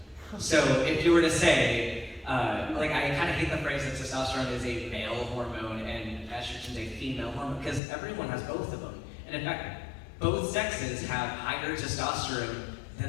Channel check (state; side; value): drops out; right; at 7.8 s